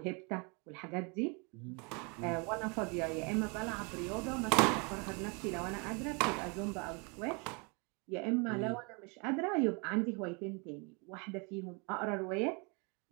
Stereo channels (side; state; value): left; quieter; 32.3 dB